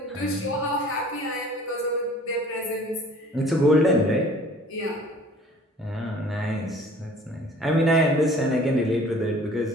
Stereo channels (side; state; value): both; normal; correlation 0.50